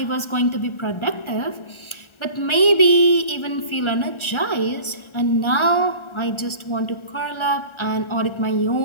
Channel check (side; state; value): right; late; 1.4 ms